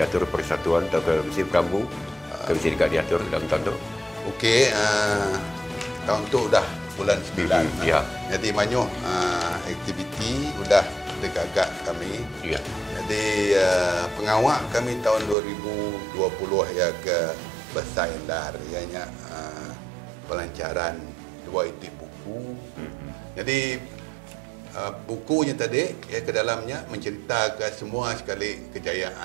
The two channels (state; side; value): drops out; left; at 15.4 s